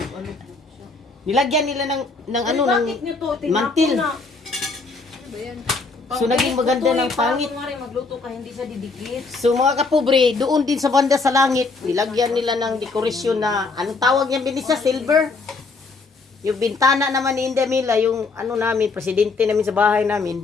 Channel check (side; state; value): right; quieter; 4.0 dB